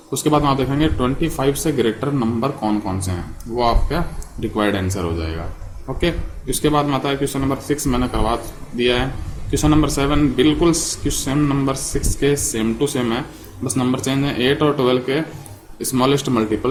उसके बाद आप देखेंगे 25 से ग्रेटर नंबर कौन कौन से हैं, वो आपका रिक्वायर्ड आंसर हो जाएगा। ओके, इसके बाद में आता है क्वेश्चन नंबर 6 मैंने करवा दिया है। क्वेश्चन नंबर 7 बिल्कुल क्वेश्चन नंबर 6 के सेम टू सेम है, बस नंबर चेंज है। 8 और 12 के स्मॉलेस्ट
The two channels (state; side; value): identical; both; correlation 1.00